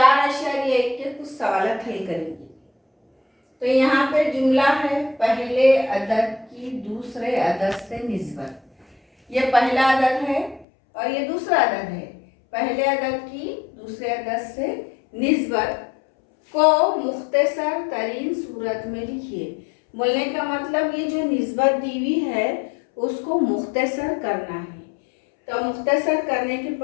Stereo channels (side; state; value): right; drops out; at 10.7 s